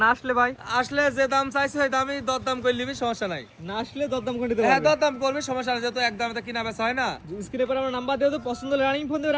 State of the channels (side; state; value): both; identical; correlation 1.00